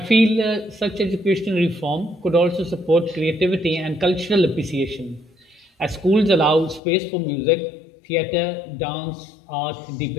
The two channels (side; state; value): right; drops out; at 6.8 s